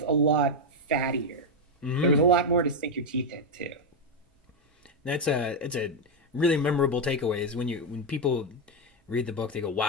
a lot fattier. There was a Hmm. lot more to sink your teeth into. That's a it's a really memorable takeaway is when people read the book, they go,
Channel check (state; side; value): normal; both; correlation 0.04